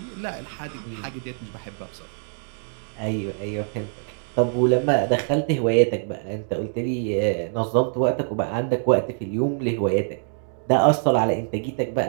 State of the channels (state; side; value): silent; left; digital silence